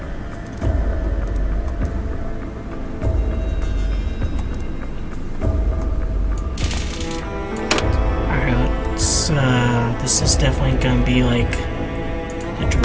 This is definitely gonna be like the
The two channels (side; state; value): both; identical; correlation 1.00